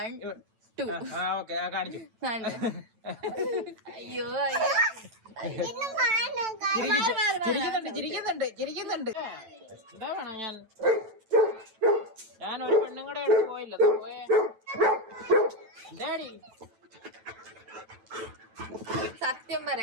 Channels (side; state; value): left; late; 9.0 ms